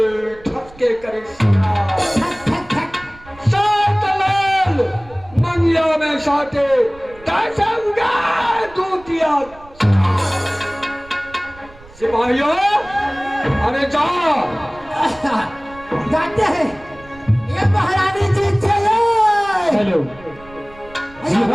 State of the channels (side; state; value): right; noise; rumble, 23 dB below the sound